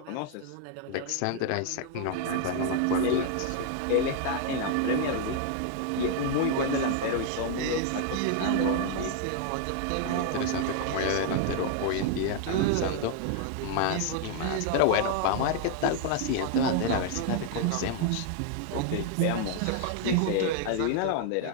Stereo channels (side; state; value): both; different; correlation 0.00